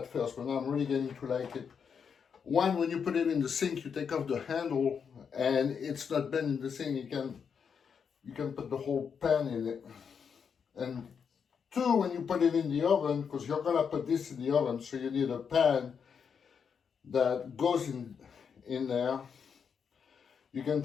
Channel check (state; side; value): quieter; right; 6.7 dB